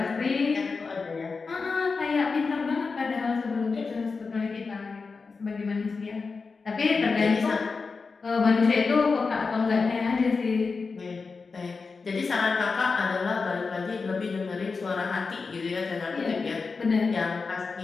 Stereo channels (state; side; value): quieter; right; 4.6 dB